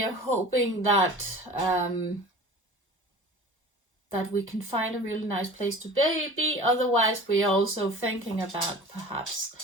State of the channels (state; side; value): normal; both; correlation 0.40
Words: are hoping that that we can find a really nice place to be. Otherwise, we're also thinking about perhaps